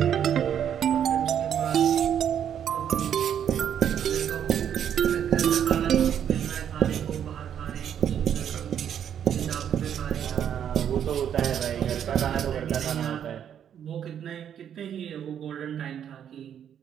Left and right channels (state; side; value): quieter; left; 9.1 dB